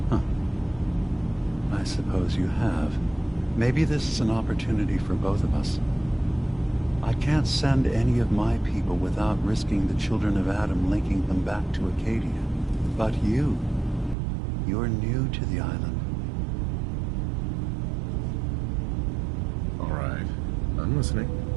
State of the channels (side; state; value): left; drops out; at 14.2 s